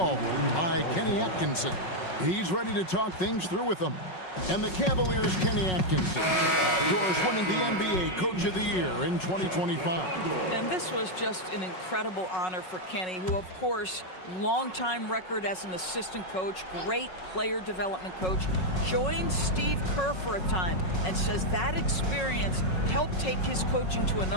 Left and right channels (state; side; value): late; right; 5.4 ms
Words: by Kenny Atkinson. He's ready to talk things through with them. And the Cavaliers' Kenny Atkinson, yours winning the NBA Coach of the Year in 2025. And this was just an incredible honor for Kenny, who, of course, longtime record as an assistant coach, great player development coach, joined Steve Kerr for a time and says that experience helped take his coaching to